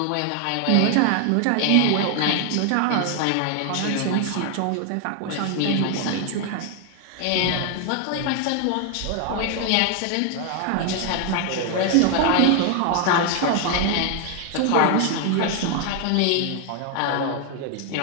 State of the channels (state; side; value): different; both; correlation 0.01